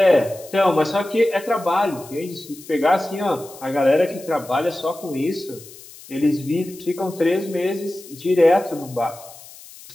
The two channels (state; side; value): noise; left; hiss, 19 dB below the sound